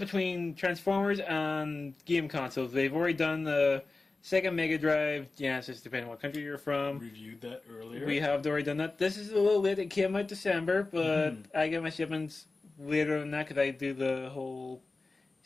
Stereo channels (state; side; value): quieter; right; 3.5 dB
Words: Transformers and game consoles. They've already done the Sega Mega Drive, Genesis, depending on what country you're from. Reviewed that earlier. We have already done that. This is a little late. It came out December, but I get my shipments later than that because I do the whole